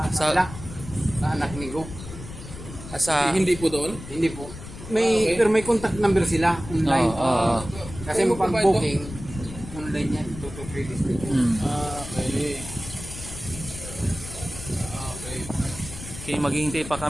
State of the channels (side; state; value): left; noise; rumble, 12 dB below the sound